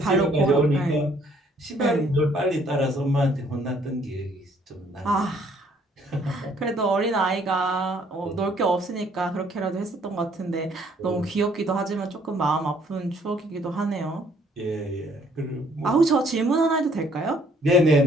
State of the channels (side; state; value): both; normal; correlation 0.63